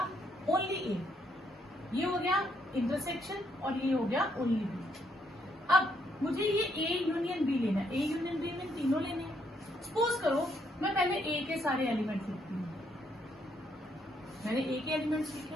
ओनली ए, ये हो गया इंटरसेक्शन और ये हो गया ओनली बी। अब मुझे ये ए यूनियन बी लेना है, ए यूनियन बी में तीनों लेने हैं। सपोज करो मैं पहले ए के सारे एलिमेंट लिखती हूँ, मैंने ए के एलिमेंट्स लिखे,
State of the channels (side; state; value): both; normal; correlation 0.73